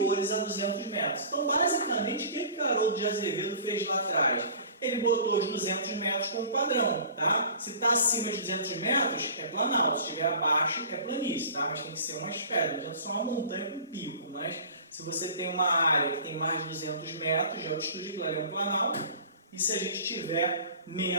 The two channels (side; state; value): both; inverted; correlation -0.43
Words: a 200 metros. Então, basicamente, o que Haroldo de Azevedo fez lá atrás? Ele botou os 200 metros como padrão, tá? Se está acima de 200 metros, é planalto. Se estiver abaixo, é planície, tá? Mas tem que ser umas pedras, não adianta só uma montanha com pico. Mas se você tem uma área que tem mais de 200 metros de altitude, aquilo ali é um planalto. E se a gente tiver